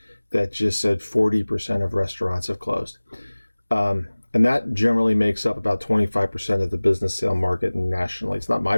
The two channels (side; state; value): both; inverted; correlation -1.00